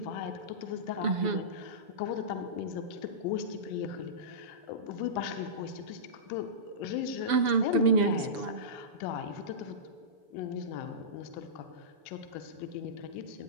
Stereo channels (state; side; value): late; left; 7.0 ms